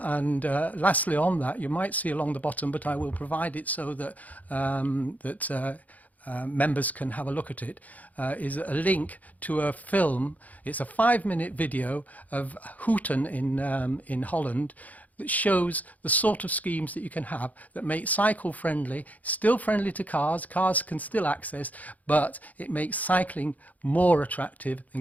on that, you might see along the bottom, but I will provide it so that members can have a look at it, is a link to a film. It's a 5-minute video of Hooten in Holland that shows the sort of schemes that you can have that make cycle friendly, still friendly to cars, cars can still access, but it makes cycling more attractive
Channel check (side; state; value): right; late; 0.077 ms